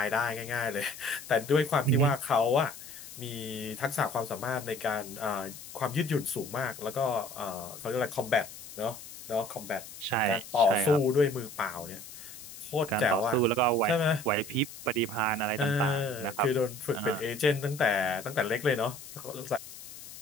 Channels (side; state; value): left; noise; hiss, 14 dB below the sound